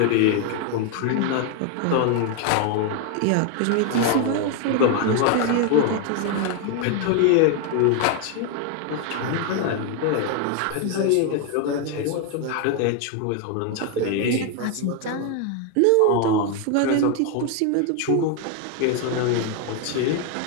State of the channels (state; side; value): different; both; correlation 0.01